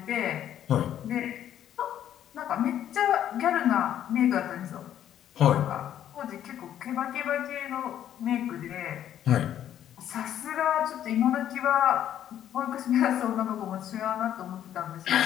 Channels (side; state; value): right; quieter; 10.7 dB